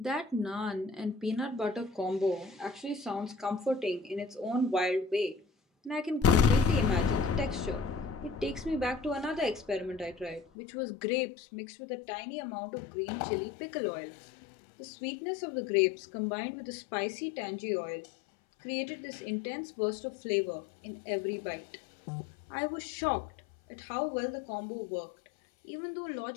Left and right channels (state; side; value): drops out; right; at 10.5 s